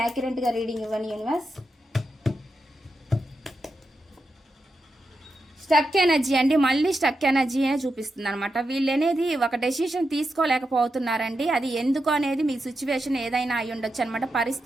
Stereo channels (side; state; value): both; normal; correlation 0.87